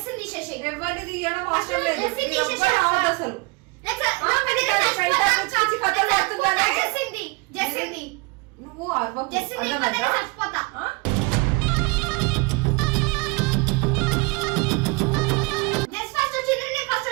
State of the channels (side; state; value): left; quieter; 28.9 dB